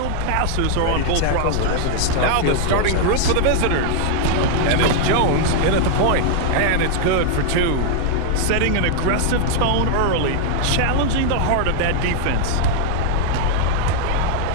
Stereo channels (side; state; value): both; different; correlation 0.00